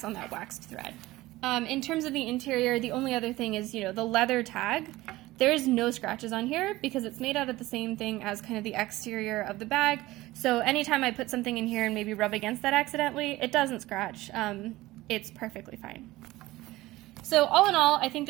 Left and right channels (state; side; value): quieter; left; 18.2 dB